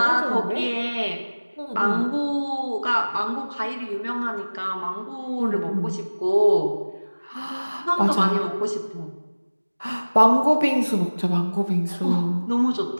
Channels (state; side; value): inverted; both; correlation -1.00